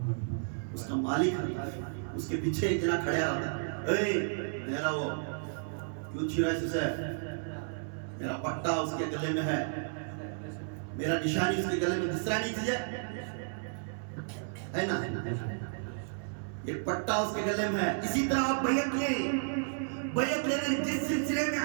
اس کا مالک اس کے پیچھے ایک جنا کھڑیا رہتا ہے. اے میرا وہ کیوں چھیرا اسے؟ میرا پٹا اس کے گلے میں ہے، میرا نشانی اس کے گلے میں دسرا نہیں چیز ہے نا. یہ پٹا اس کے گلے میں ہے. اسی طرح آپ بیعت لینے جس سلسلے میں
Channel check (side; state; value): left; silent; 56 dB below the other